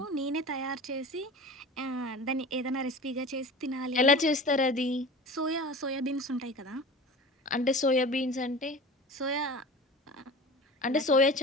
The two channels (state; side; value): normal; both; correlation 0.35